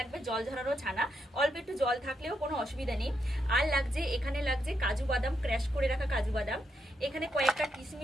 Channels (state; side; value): normal; both; correlation 0.81